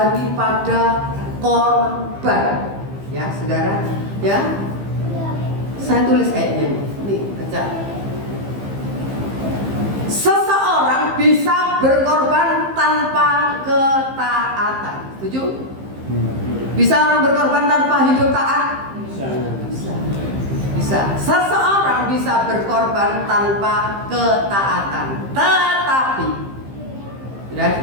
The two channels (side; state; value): left; late; 15 ms